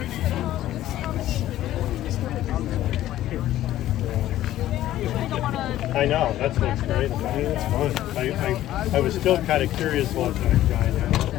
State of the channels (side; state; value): right; quieter; 13.7 dB